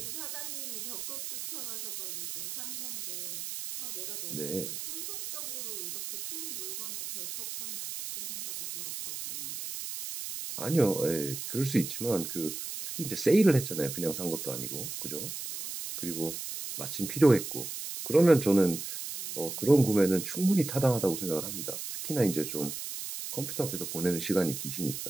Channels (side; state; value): right; noise; hiss, 7 dB below the sound